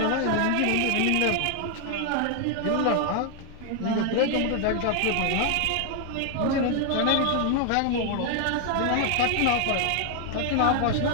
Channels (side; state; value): both; different; correlation 0.00